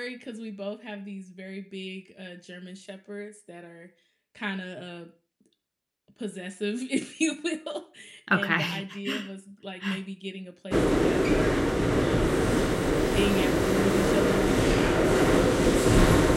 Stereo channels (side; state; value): both; identical; correlation 1.00